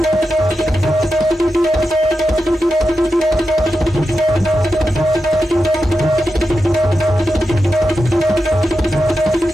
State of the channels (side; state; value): both; normal; correlation 0.89